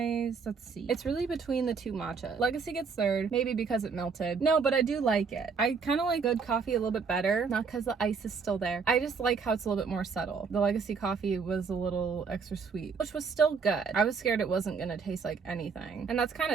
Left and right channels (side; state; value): left; quieter; 5.4 dB